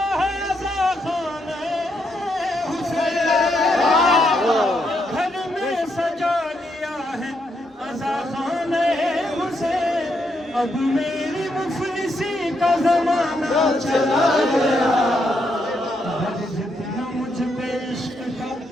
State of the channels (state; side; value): normal; both; correlation 0.78